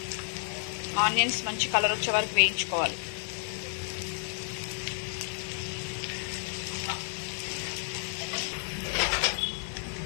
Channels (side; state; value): right; silent; 57 dB below the other